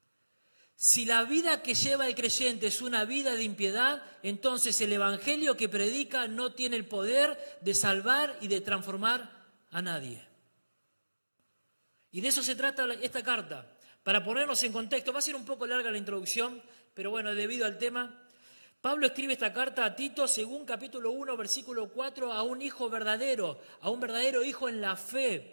Si la vida que lleva el creyente es una vida de impiedad, entonces el evangelio que predica no tiene el poder de salvar y de transformar a nadie. Y de eso se trata esta carta. Para ponernos en contexto, va a ser un poco larga la introducción, pero bueno, debido al tema, Pablo escribe esta carta a Tito según capítulo 1, versículo 4, a un hijo verdadero, a un verdadero hijo en la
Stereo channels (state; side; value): inverted; both; correlation -1.00